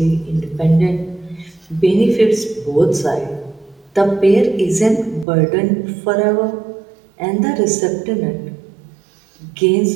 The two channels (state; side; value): drops out; left; at 5.2 s